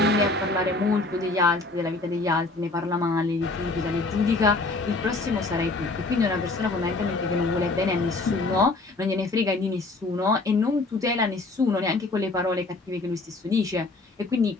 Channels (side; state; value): right; quieter; 3.3 dB